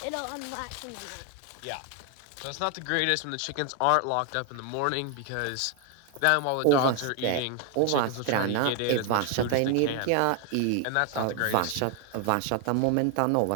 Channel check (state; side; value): different; both; correlation 0.01